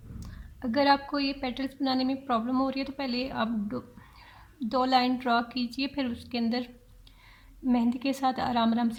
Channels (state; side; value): identical; both; correlation 1.00